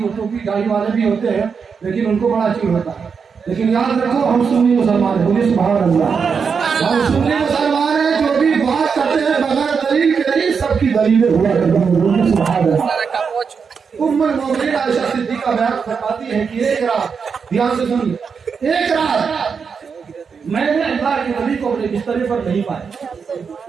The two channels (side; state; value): left; quieter; 5.9 dB